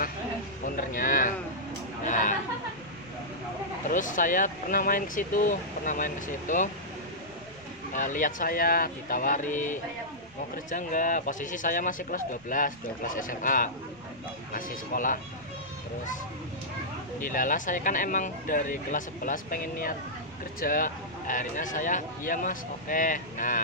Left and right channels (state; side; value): noise; left; rumble, 27 dB below the sound